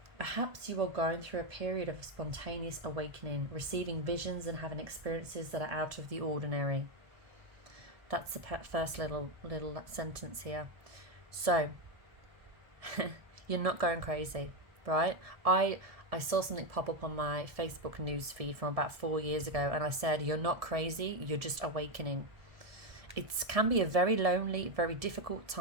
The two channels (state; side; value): late; left; 1.7 ms